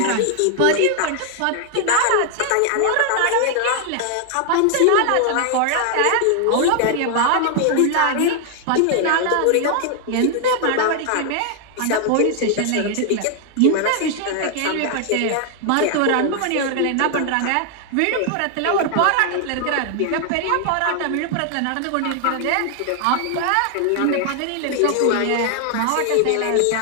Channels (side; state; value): both; different; correlation 0.00